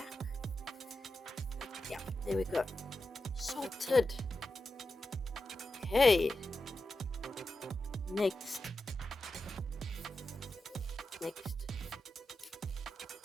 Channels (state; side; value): normal; both; correlation 0.90